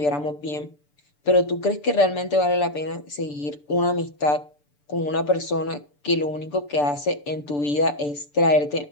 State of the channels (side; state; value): right; late; 6.8 ms